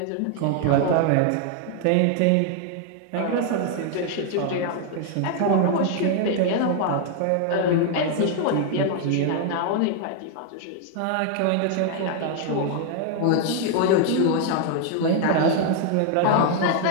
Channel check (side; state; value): both; different; correlation 0.00